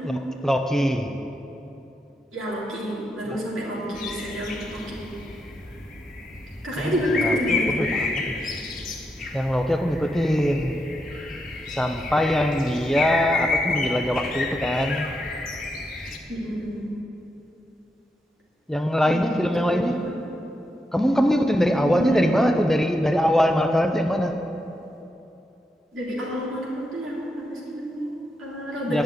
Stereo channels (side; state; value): both; normal; correlation 0.83